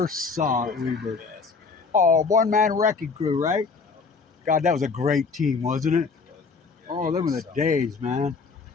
saw at Weber. Oh, one-man wrecking crew, right? God, that was a great team, wasn't it? Oh, them were the days, man.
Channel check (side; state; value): right; quieter; 4.8 dB